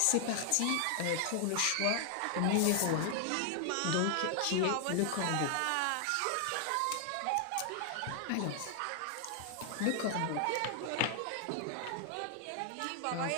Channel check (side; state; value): both; different; correlation 0.00